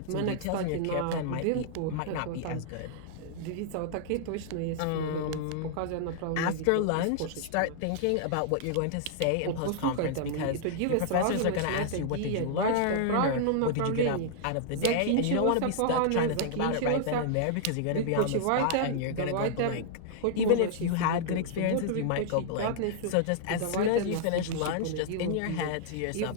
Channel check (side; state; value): both; different; correlation -0.01